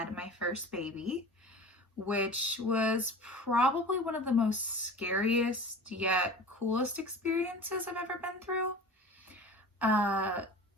my first baby, which was probably one of the most scariest yet coolest experiences I've ever been through.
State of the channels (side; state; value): both; normal; correlation 0.38